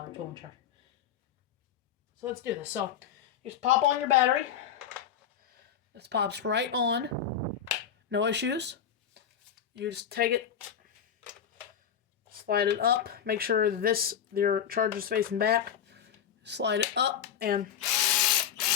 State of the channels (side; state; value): right; quieter; 8.5 dB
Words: tool and charger. So let's do this. So you just pop on your battery. This pops right on. No issues. You just take it, slide it up. Make sure your charger's facing back. Slide it up and